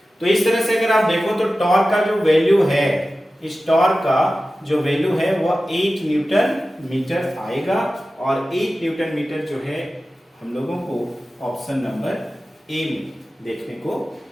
तो इस तरह से अगर आप देखो तो टॉर्क का जो वैल्यू है, इस टॉर्क का जो वैल्यू है वह 8 न्यूटन मीटर आएगा, और 8 न्यूटन मीटर जो है हम लोगों को ऑप्शन नंबर ए में देखने को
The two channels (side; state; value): both; normal; correlation 0.95